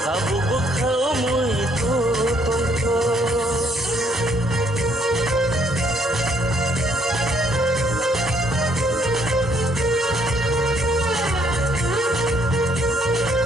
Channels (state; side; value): normal; both; correlation 0.68